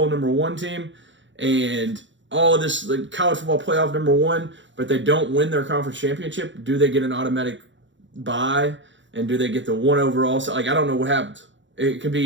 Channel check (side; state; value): left; late; 0.54 ms